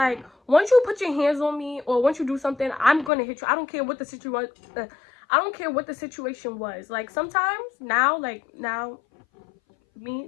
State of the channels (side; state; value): right; drops out; at 3.1 s